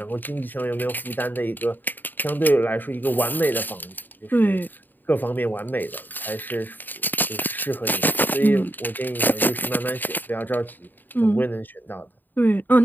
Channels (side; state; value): right; late; 0.090 ms